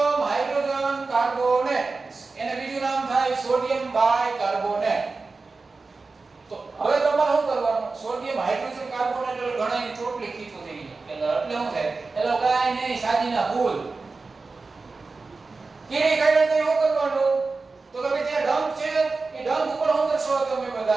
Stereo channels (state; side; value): quieter; left; 4.0 dB